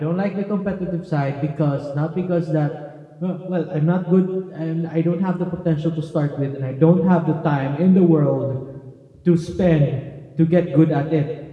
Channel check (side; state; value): both; identical; correlation 1.00